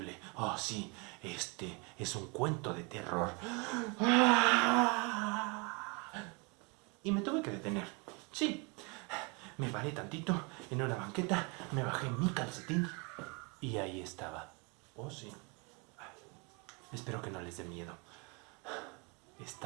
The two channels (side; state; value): left; quieter; 29.5 dB